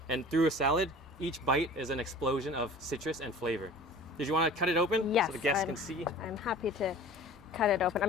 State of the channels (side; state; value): both; normal; correlation 0.43